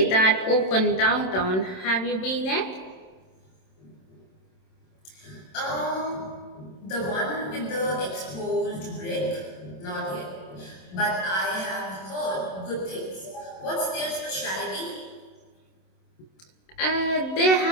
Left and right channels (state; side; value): late; right; 27 ms